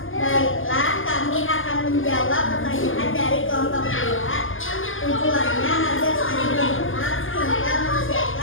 menjawab pertanyaan dari kelompok 2. Tujuannya agar saling mengenal, sehingga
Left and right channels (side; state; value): right; late; 0.58 ms